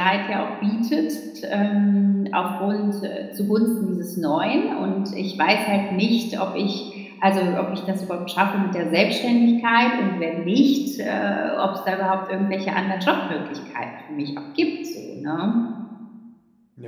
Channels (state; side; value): identical; both; correlation 1.00